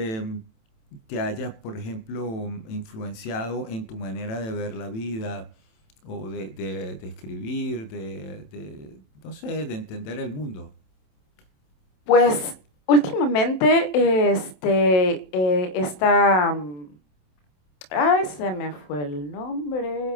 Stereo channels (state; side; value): late; right; 27 ms